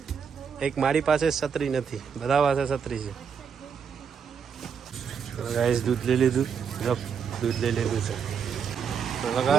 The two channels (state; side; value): quieter; left; 6.8 dB